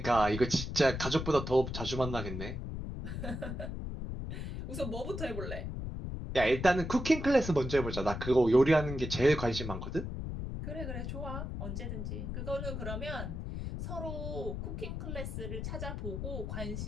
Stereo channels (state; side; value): noise; left; rumble, 5 dB below the sound